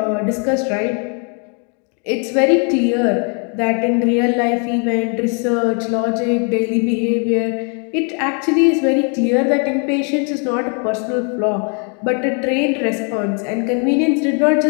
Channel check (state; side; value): quieter; right; 39.0 dB